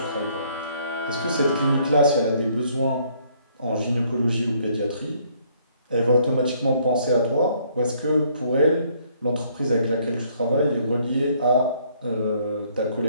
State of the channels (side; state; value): both; inverted; correlation -0.65